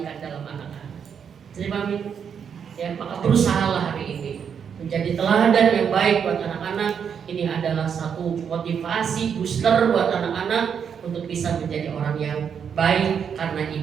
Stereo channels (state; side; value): quieter; left; 7.4 dB